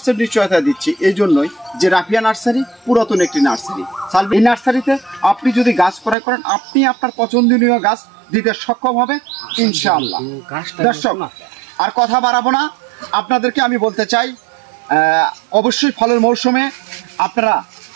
নিশ্চয়তা দিচ্ছি এই জন্যই যে রাফিয়া নার্সারি পুরাতন একটি নার্সারি। এই নার্সারিতে আপনি যদি গাছ ক্রয় করেন, আপনি আপনার পছন্দনীয় গাছ দিতে সক্ষম হবে ইনশাআল্লাহ। দর্শক, আর কথা বাড়াবো না, আপনাদেরকে আমি বলতে চাই, অবশ্যই ফলের মৌসুমে আপনারা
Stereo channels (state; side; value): drops out; left; at 6.2 s